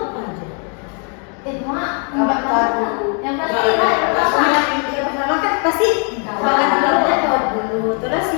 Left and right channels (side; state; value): right; quieter; 39.5 dB